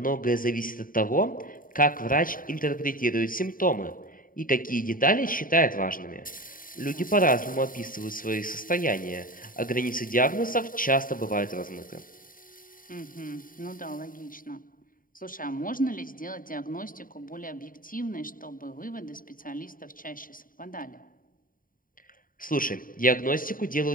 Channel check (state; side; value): late; right; 0.40 ms